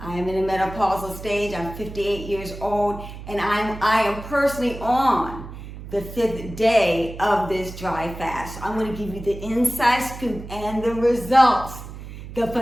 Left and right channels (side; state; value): right; noise; hum, 12 dB below the sound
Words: am in a menopausal stage. I'm 58 years old, and I am personally on the 5th day of this dry fast. I'm going to give you the inside scoop and the results, the